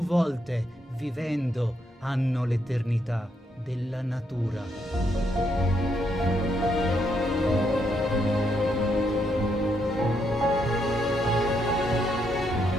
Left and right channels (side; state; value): both; normal; correlation 0.77